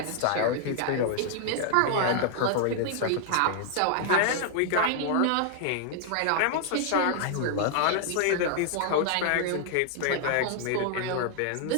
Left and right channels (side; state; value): both; different; correlation 0.00